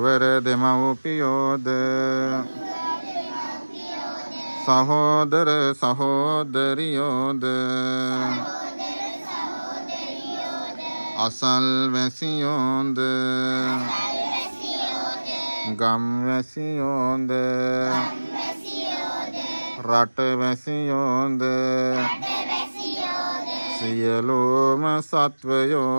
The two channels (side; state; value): both; inverted; correlation -1.00